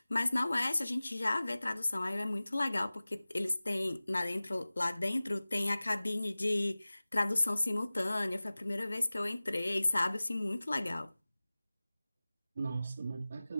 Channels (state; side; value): inverted; both; correlation -0.98